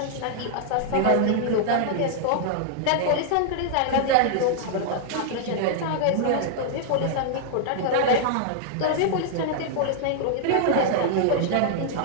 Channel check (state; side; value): different; both; correlation -0.01